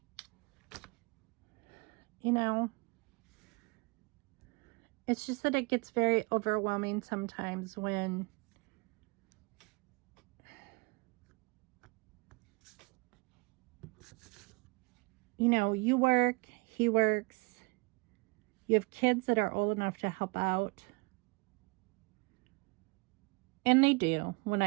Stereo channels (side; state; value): left; quieter; 29.1 dB